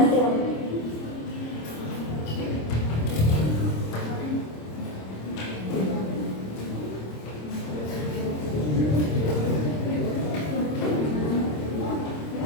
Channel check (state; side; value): late; right; 26 ms